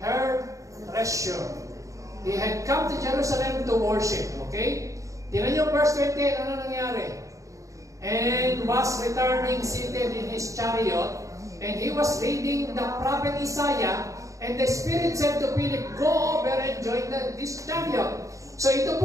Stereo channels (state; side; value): late; left; 0.16 ms